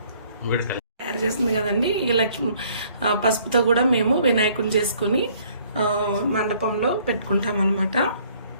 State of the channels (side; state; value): both; inverted; correlation -0.61